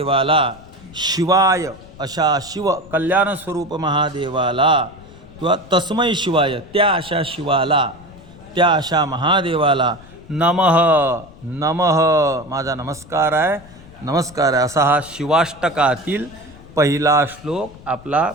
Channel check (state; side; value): noise; left; rumble, 21 dB below the sound